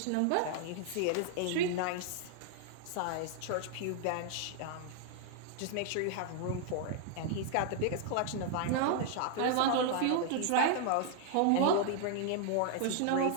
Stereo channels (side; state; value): both; different; correlation 0.00